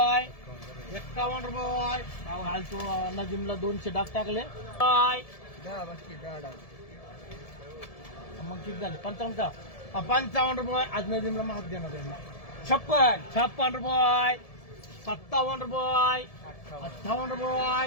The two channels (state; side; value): late; right; 1.7 ms